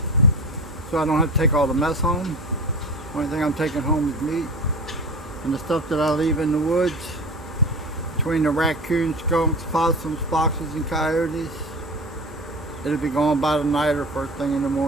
so I don't have to take all the mess home. Only thing I'm taking home is meat and the stuff that I leave in the woods between the raccoons, skunks, possums, foxes, and coyotes. It'll be gone by the night or first thing in the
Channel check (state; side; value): normal; both; correlation 0.32